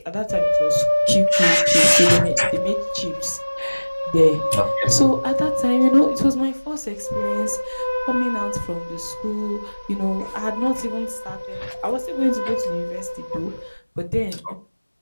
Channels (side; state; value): both; inverted; correlation -1.00